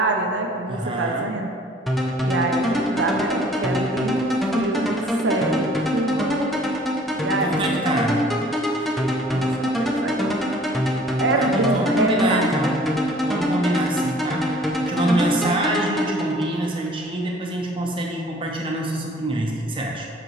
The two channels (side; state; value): both; normal; correlation 0.54